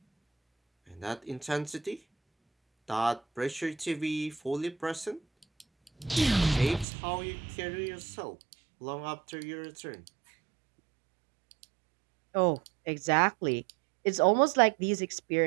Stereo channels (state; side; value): drops out; left; at 6.9 s